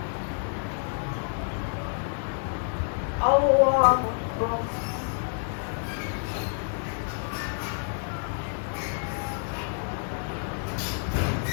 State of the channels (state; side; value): silent; right; 59 dB below the other